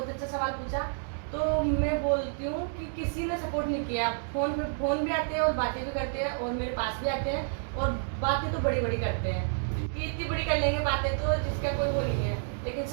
अच्छा सवाल पूछा। तो मैं बोलती हूँ कि किसी ने सपोर्ट नहीं किया। फोन भी आते हैं और बातें भी करते हैं और मेरे पास भी आते हैं और बातें तो बड़ी बड़ी करते हैं कि इतनी बड़ी कर लेंगे बातें तो जिसका कोई वो नहीं है, लेकिन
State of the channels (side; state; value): left; silent; digital silence